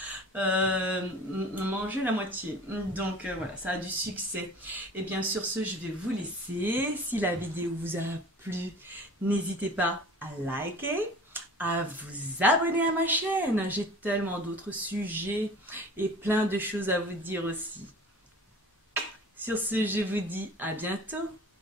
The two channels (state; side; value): normal; both; correlation 0.42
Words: mangé la moitié. Donc voilà, ça a du succès. Et bien sur ce, je vais vous laisser. Si la vidéo vous a plu, n'hésitez pas à liker, à vous abonner à ma chaîne. J'ai tellement d'autres sujets et plein de choses à vous dire aussi. Sur ce, je vous dis à bientôt.